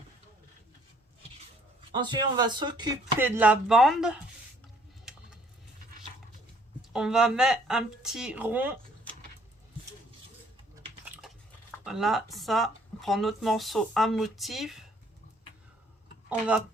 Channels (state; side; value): normal; both; correlation 0.62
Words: Ensuite, on va s'occuper de la bande. On va mettre un petit rond. Voilà, ça. On prend notre morceau à motif.